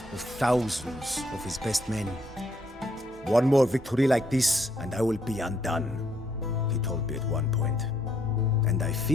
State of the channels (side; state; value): both; normal; correlation 0.72